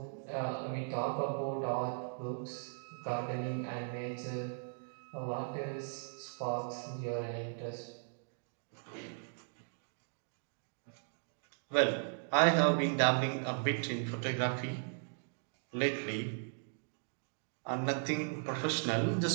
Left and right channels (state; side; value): silent; left; digital silence